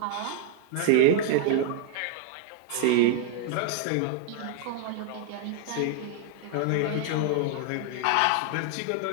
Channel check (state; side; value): different; both; correlation 0.00